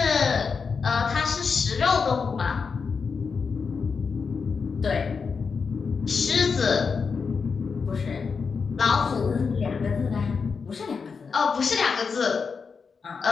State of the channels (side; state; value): right; quieter; 5.4 dB